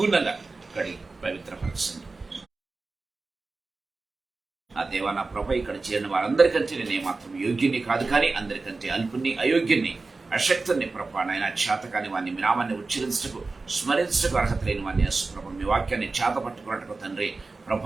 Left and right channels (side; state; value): left; quieter; 3.8 dB